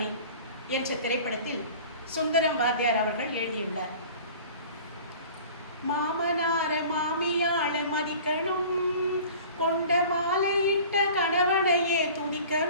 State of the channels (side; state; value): both; inverted; correlation -0.44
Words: என்ற திரைப்படத்தில் சுந்தரம் வாத்தியார் அவர்கள் எழுதியுள்ளார். மாமனார மாமியாள மதிக்கணும், கொண்ட மாலையிட்ட கணவனையே